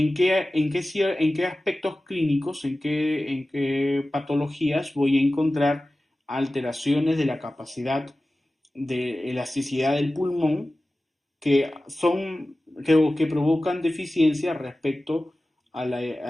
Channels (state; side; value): normal; both; correlation 0.96